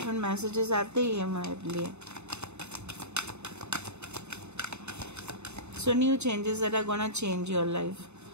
मैसेजेस आते ही है मेरे लिए। So new changes that are gonna change your life.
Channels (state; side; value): late; left; 0.81 ms